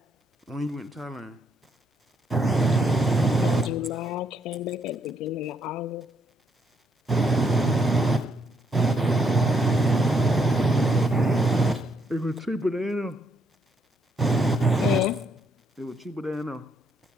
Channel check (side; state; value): both; normal; correlation 0.74